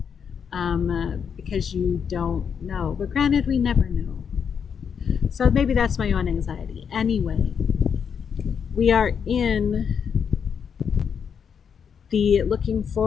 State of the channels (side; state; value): right; quieter; 7.1 dB